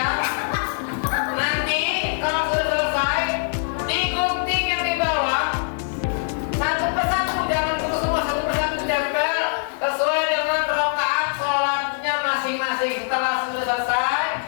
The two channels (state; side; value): silent; right; digital silence